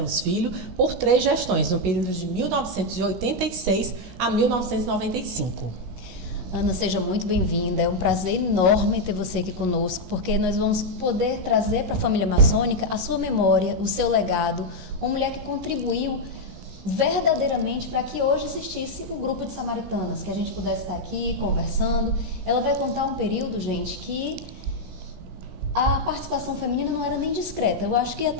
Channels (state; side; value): late; left; 16 ms